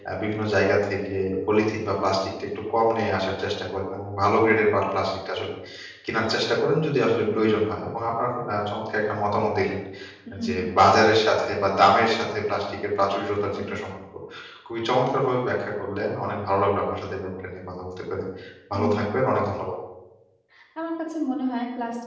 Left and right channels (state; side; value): identical; both; correlation 1.00